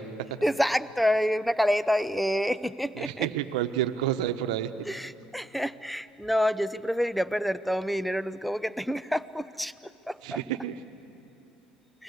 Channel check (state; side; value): normal; both; correlation 0.79